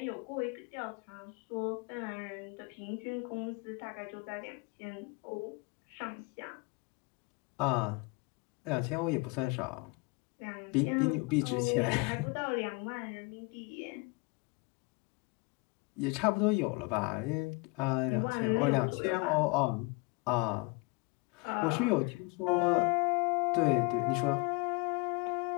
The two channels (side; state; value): right; quieter; 27.6 dB